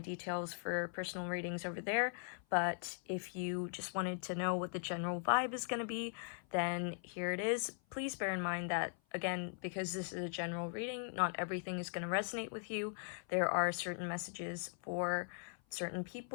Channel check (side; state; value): right; silent; 51 dB below the other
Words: details for personal readings over there. But if you just wanted to know what the general vibe is going to be, then here it is. Please bear in mind that, again, because this is a general reading, not everything is going to resonate with you. There are certain messages for certain